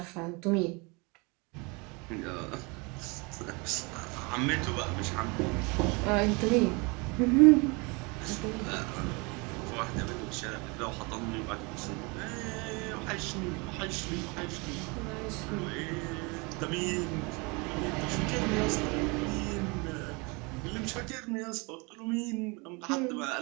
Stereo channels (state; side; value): quieter; left; 28.7 dB